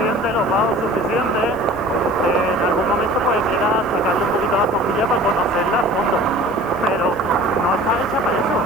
los bajos suficientes, en algún momento pues quiera sacarle un poquito la cojilla para conocerla a fondo. Pero no está hecha para eso,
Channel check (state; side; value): noise; right; hiss, 28 dB below the sound